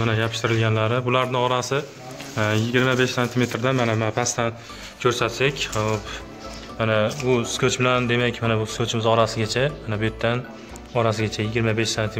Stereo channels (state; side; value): identical; both; correlation 1.00